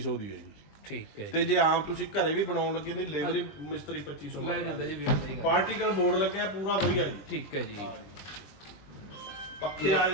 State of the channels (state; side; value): late; right; 20 ms